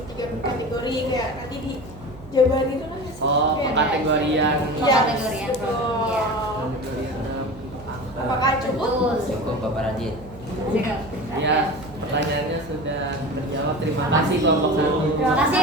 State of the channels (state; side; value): noise; right; hum, 18 dB below the sound